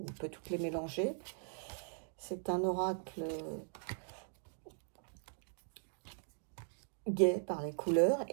peut toutes les mélanger. C'est un oracle gai par les couleurs,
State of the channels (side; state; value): left; silent; digital silence